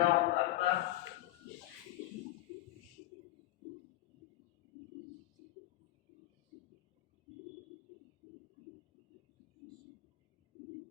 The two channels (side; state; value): right; quieter; 16.3 dB